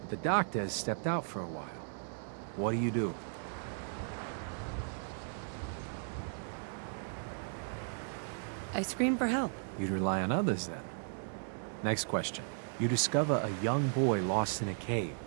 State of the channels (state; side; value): silent; left; digital silence